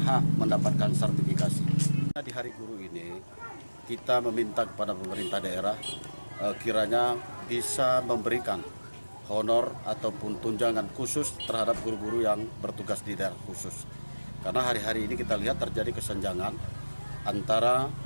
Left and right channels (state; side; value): inverted; both; correlation -1.00